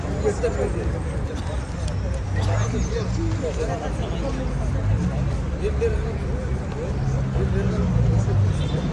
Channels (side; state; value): both; identical; correlation 1.00